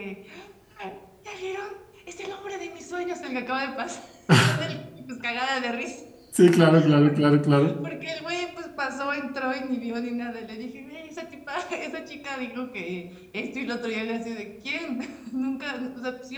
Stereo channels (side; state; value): both; identical; correlation 1.00